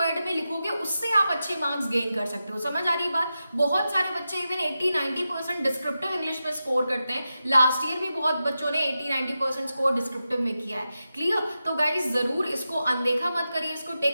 में लिखोगे उससे आप अच्छे मार्क्स गेन कर सकते हो। समझ आ रही बात? बहुत सारे बच्चे इवन 80-90% डिस्क्रिप्टिव इंग्लिश में स्कोर करते हैं। लास्ट ईयर भी बहुत बच्चों ने 80-90% स्कोर डिस्क्रिप्टिव में किया है। क्लियर? तो गाइज जरूर इसको अनदेखा मत करिए, इसको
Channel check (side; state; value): both; inverted; correlation -0.91